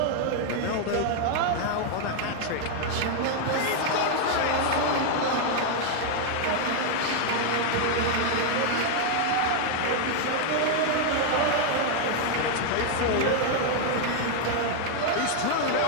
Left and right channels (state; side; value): different; both; correlation 0.00